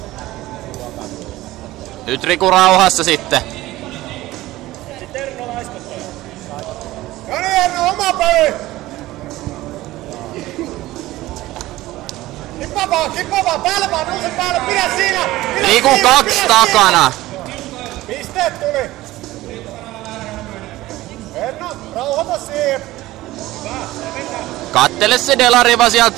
Nyt Riku rauhassa sitten. Oma peli! Kippa vaan, päälle vaan, nouse päälle, pidä siinä! Riku 2 takana. Pisteet tuli! Erno, rauhoita siihen! Kattele se delariva sieltä.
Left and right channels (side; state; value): left; quieter; 17.1 dB